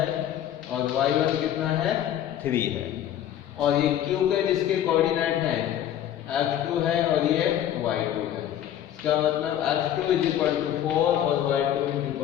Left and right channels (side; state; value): right; quieter; 11.0 dB